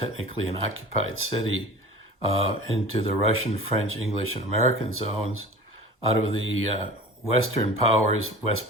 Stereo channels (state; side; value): normal; both; correlation 0.39